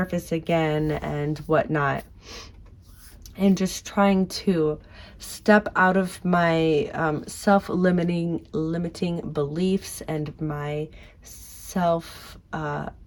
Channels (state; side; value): identical; both; correlation 1.00